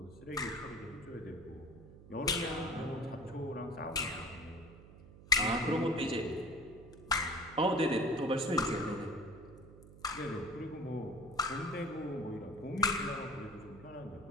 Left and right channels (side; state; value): right; noise; hum, 18 dB below the sound